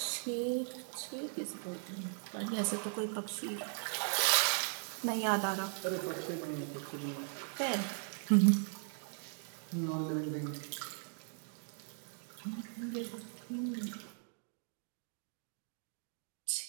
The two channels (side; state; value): left; silent; 52 dB below the other